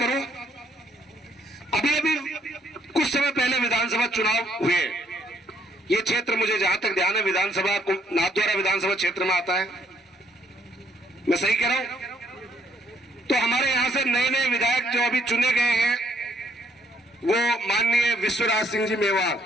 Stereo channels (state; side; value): normal; both; correlation 0.69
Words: अभी कुछ समय पहले विधानसभा चुनाव हुए, ये क्षेत्र मुझे जहां तक ध्यान है विधानसभा नाथद्वारा विधानसभा क्षेत्र में आता है, मैं सही कह रहा हूं? तो हमारे यहां से नए नए विधायक जो अभी चुने गए हैं वो माननीय विश्वराज सिंह जी मेवाड़।